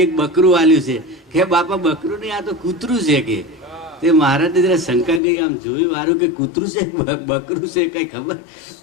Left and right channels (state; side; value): drops out; right; at 5.2 s